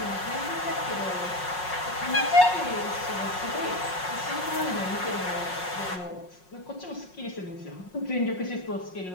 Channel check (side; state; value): right; late; 5.5 ms